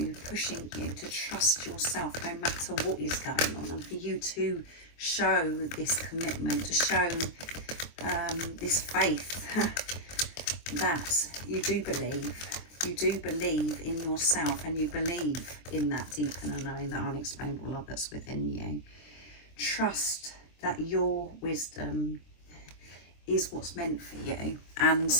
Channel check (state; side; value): late; right; 23 ms